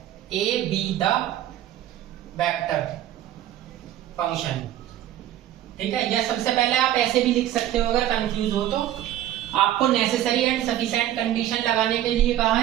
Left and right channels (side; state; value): left; quieter; 12.7 dB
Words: A be the vector function, ठीक है। या सबसे पहले आप ऐसे भी लिख सकते हो, अगर कंफ्यूज हो तो। आपको नेसेसरी एंड सफिशिएंट कंडीशन लगाने के लिए कहा